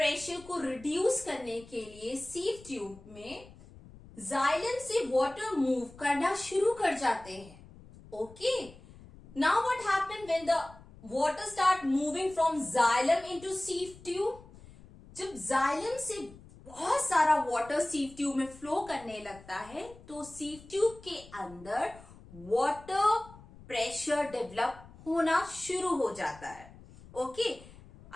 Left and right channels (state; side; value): noise; left; rumble, 21 dB below the sound